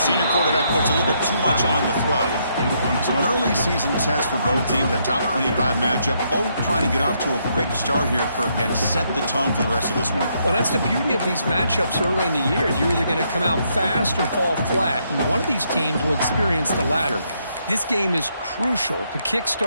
quarterback puts a little bit too much on the throw. So an early season test for both teams, a top 25 matchup. Both trying to get off to a quick start here, Kirk, and set the tone for the rest of this one. Well, that's the beauty of these matchups early in the year. You're either going to come out fast or fall flat, and one of these teams will experience the latter. This game is crucial to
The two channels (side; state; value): both; inverted; correlation -0.75